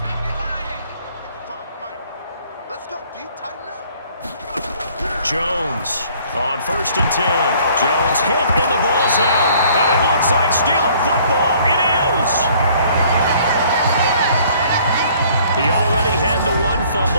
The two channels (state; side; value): inverted; both; correlation -0.58